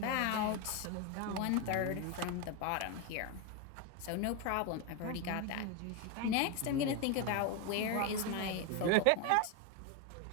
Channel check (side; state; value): both; different; correlation 0.02